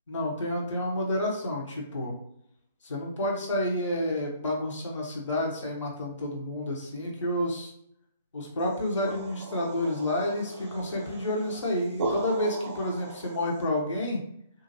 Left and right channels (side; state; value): both; inverted; correlation -0.58